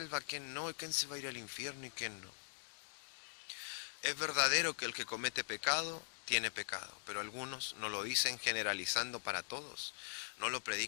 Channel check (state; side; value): silent; right; digital silence